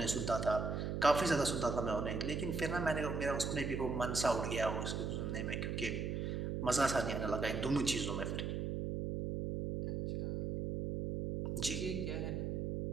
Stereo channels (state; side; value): noise; right; hum, 1 dB below the sound